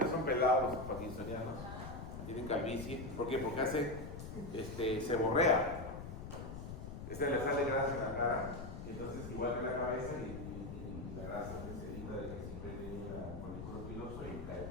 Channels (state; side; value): noise; left; rumble, 8 dB below the sound